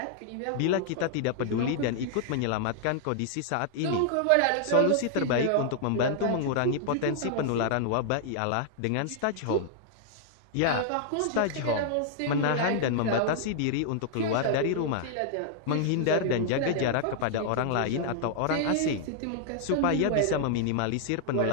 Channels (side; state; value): both; different; correlation -0.01